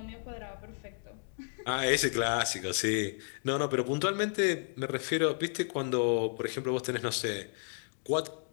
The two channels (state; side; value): silent; right; digital silence